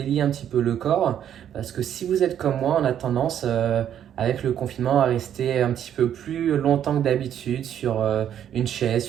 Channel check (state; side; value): quieter; left; 9.9 dB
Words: un petit peu le corps, parce que si vous êtes comme moi, on a tendance avec le confinement à rester un petit peu plus longtemps que d'habitude sur une chaise,